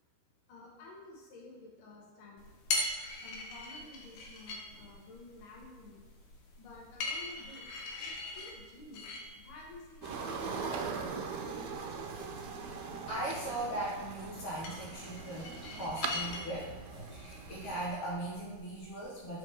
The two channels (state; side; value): late; right; 13 ms